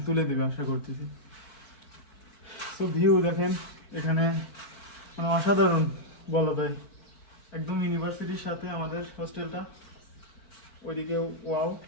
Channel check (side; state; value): right; late; 4.7 ms